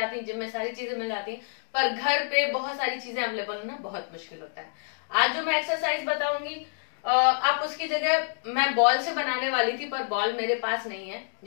हैं, जिम में सारी चीजें मिल जाती हैं, पर घर पे बहुत सारी चीजें अवेलेबल होना बहुत मुश्किल होता है। आज जो मैं एक्सरसाइज बताऊंगी आप उसकी जगह मैं बॉल से बनाने वाली थी, पर बॉल मेरे पास नहीं है,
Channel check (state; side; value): silent; right; digital silence